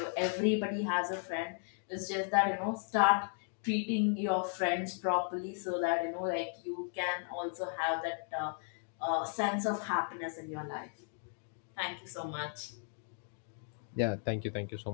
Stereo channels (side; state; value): right; silent; 54 dB below the other